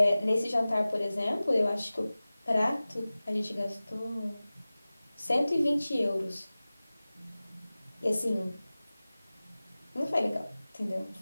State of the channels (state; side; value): inverted; both; correlation -0.97